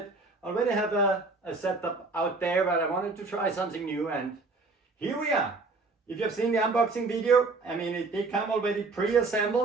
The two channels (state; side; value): quieter; left; 3.7 dB